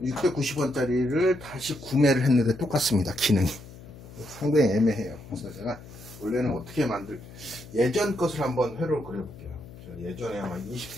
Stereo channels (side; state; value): left; noise; hum, 18 dB below the sound